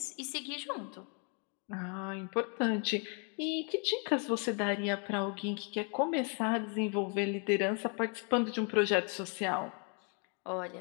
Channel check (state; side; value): quieter; right; 38.6 dB